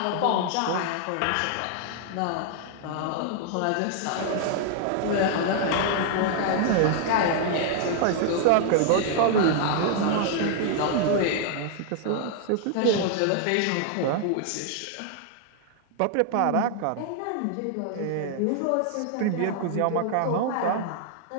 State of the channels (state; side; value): different; both; correlation 0.00